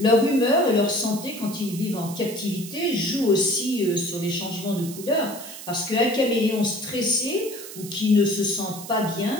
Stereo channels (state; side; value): noise; right; hiss, 13 dB below the sound